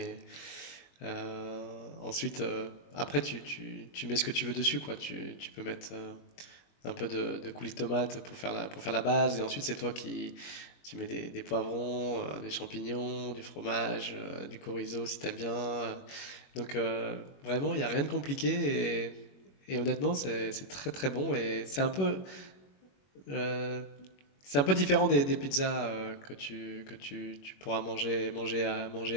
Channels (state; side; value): late; right; 21 ms